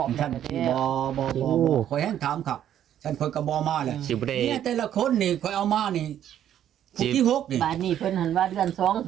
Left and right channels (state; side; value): quieter; left; 10.7 dB